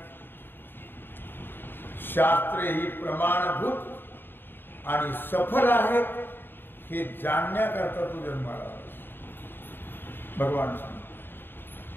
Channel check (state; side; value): late; right; 0.098 ms